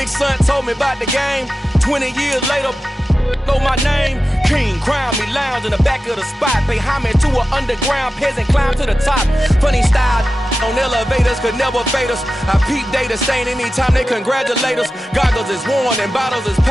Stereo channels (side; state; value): both; normal; correlation 0.93